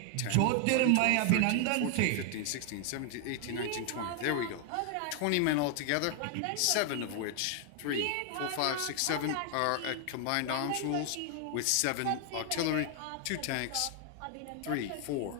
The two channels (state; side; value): different; both; correlation 0.00